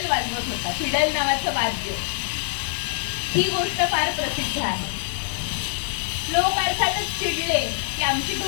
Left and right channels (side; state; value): right; silent; 62 dB below the other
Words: वाजवत होता, फिडल नावाचं वाद्य. ही गोष्ट फार प्रसिद्ध आहे. लोक अर्थातच चिडले की आमची